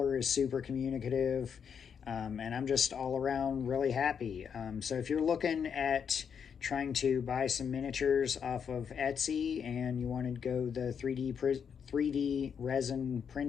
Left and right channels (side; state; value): right; quieter; 7.2 dB